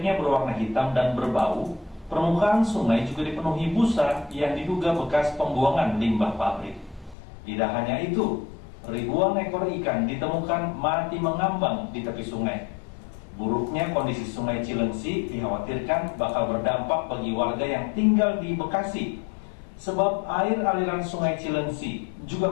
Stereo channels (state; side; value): drops out; right; at 7.2 s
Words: berwarna hitam dan berbau, permukaan sungai juga dipenuhi busa yang diduga bekas pembuangan limbah pabrik. Tidak hanya itu, ribuan ekor ikan ditemukan mati mengambang di tepi sungai. Buruknya kondisi sungai Cilengsi dikhawatirkan bakal berdampak bagi warga yang tinggal di Bekasi, sebab air aliran sungai Cilengsi